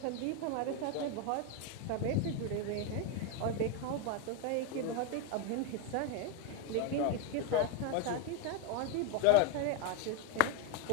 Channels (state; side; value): different; both; correlation 0.01